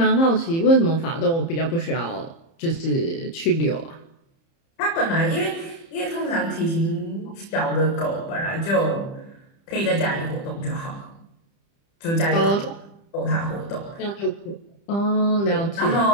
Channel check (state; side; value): late; right; 30 ms